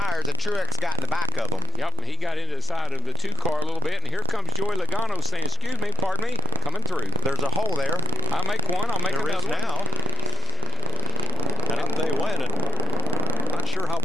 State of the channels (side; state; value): both; normal; correlation 0.25